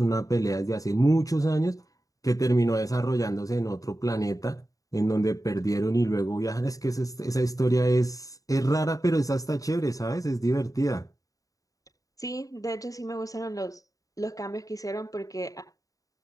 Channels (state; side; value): late; right; 0.17 ms